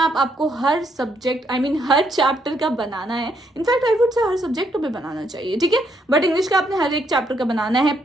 आपको हर सब्जेक्ट हर चैप्टर का बनाना है। In fact I would say her subject पे बनाना चाहिए, ठीक है, बट इंग्लिश का आपने हर एक चैप्टर का बनाना है।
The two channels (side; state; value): both; normal; correlation 0.74